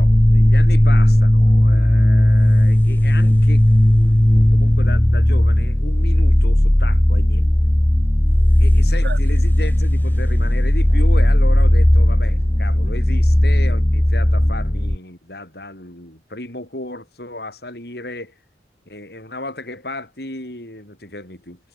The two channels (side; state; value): both; normal; correlation 0.98